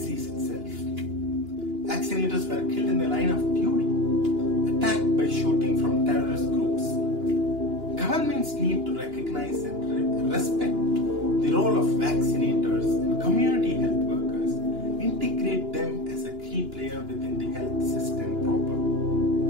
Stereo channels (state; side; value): late; left; 2.9 ms